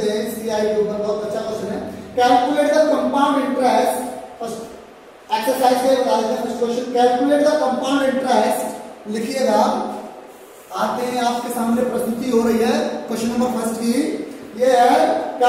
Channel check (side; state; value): both; identical; correlation 1.00